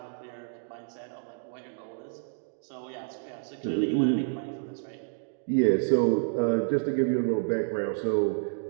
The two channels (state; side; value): silent; left; digital silence